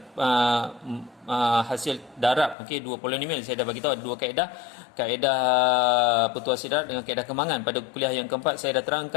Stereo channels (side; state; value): right; drops out; at 2.6 s